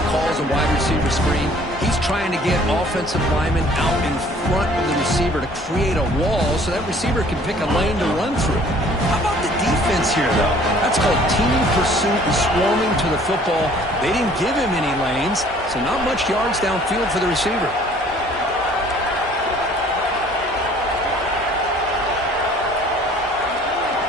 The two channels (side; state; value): both; normal; correlation 0.55